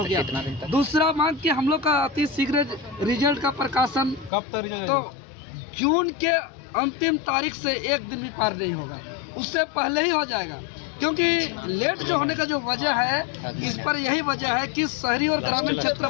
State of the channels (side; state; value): right; drops out; at 4.3 s